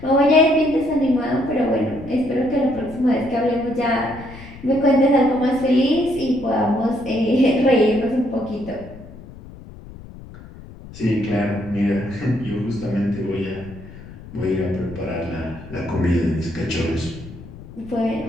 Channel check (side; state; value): left; noise; rumble, 17 dB below the sound